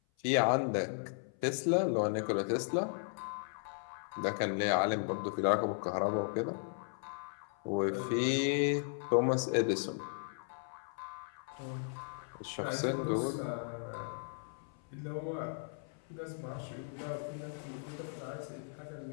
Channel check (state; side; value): silent; right; 54 dB below the other